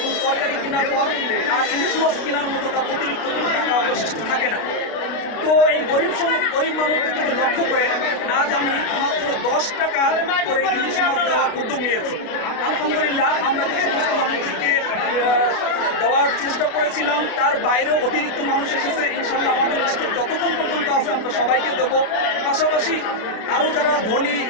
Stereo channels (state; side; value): late; right; 32 ms